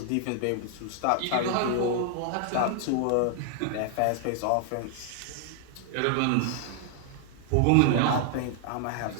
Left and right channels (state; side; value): different; both; correlation 0.00